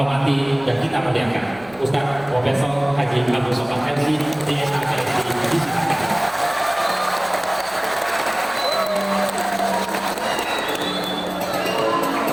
dan kita muliakan. Ustaz Profesor Haji Abdul Somad MC DSA KSI.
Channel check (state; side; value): noise; right; hum, 26 dB below the sound